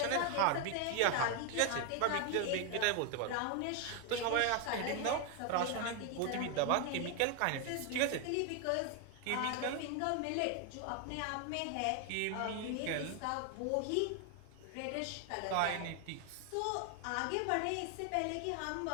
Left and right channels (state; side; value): different; both; correlation 0.01